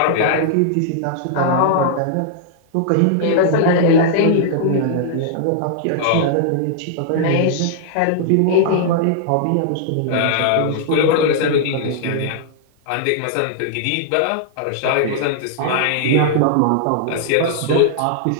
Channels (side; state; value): both; different; correlation -0.01